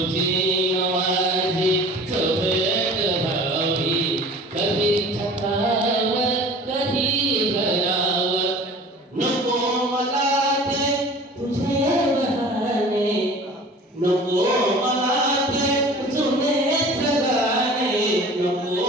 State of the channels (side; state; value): both; normal; correlation 0.43